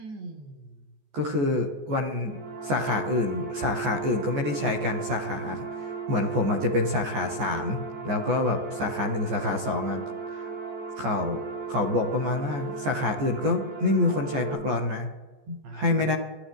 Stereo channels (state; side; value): late; left; 14 ms